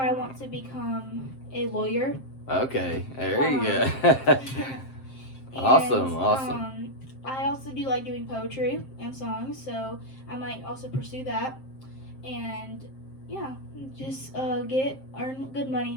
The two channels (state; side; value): late; right; 7.6 ms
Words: want to become a lawyer. Okay, there you go. And, Awesome. I also do like doing poetry and songs, so I might also pursue that. And yeah, just earn good money